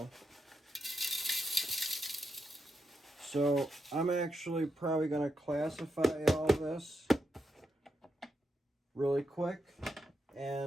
So I'm actually probably going to classify all this really quick,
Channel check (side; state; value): both; normal; correlation 0.84